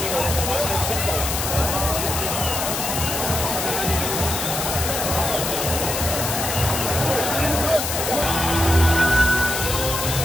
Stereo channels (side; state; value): left; noise; hiss, 2 dB below the sound